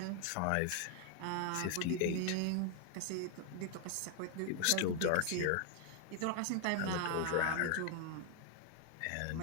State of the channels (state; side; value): different; both; correlation 0.00